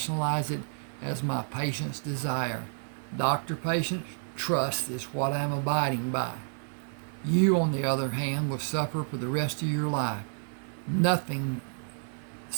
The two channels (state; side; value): silent; left; 56 dB below the other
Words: it as my patient's desire. Doctor-patient trust is what I am abiding by. You, on the other hand, will suffer for the rest of your life.